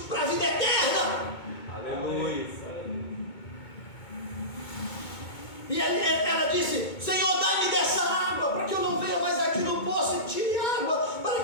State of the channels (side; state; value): right; late; 2.2 ms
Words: para a vida eterna. Aleluia. E ela disse: Senhor, dá-me dessa água, para que eu não venha mais aqui no poço e tire água, para